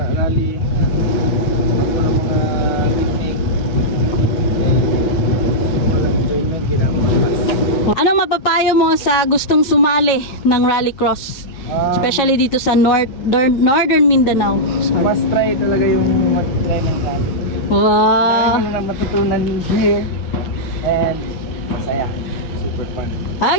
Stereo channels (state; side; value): late; right; 8.3 ms